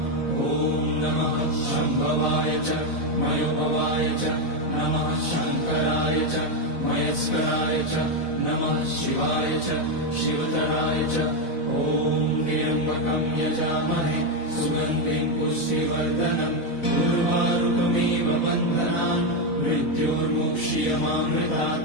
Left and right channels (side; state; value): right; late; 4.0 ms